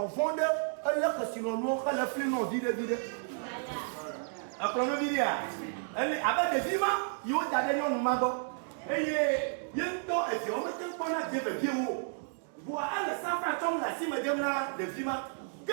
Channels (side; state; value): left; silent; digital silence